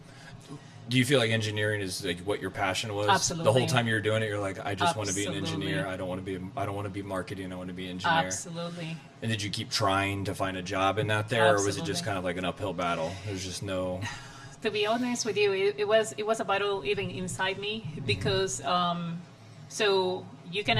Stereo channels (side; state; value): both; identical; correlation 1.00